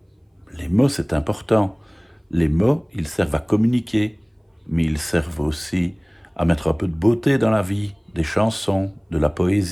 Les mots, c'est important. Les mots, ils servent à communiquer, mais ils servent aussi à mettre un peu de beauté dans la vie, des chansons, de la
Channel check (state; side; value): identical; both; correlation 1.00